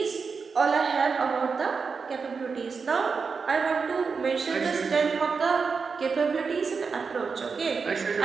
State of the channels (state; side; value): quieter; left; 5.2 dB